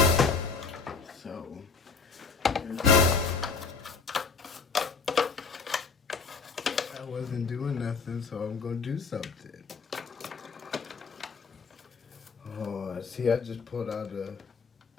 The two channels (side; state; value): right; quieter; 4.9 dB